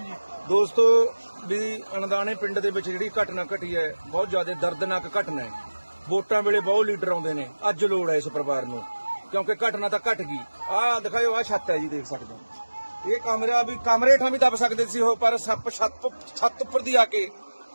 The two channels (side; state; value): both; inverted; correlation -1.00